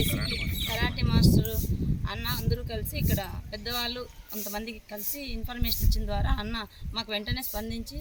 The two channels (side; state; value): both; identical; correlation 1.00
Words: కరాటే మాస్టరు అన్న అందరూ కలిసి ఇక్కడ పెద్దవాళ్ళు కొంతమందికి కలిసి ఇన్ఫర్మేషన్ ఇచ్చిన ద్వారా అన్న మాకు వెంటనే స్పందించి